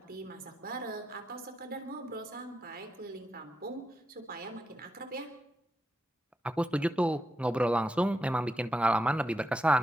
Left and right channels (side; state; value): both; normal; correlation 0.85